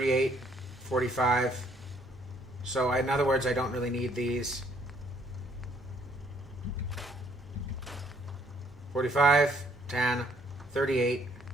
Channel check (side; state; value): both; normal; correlation 0.64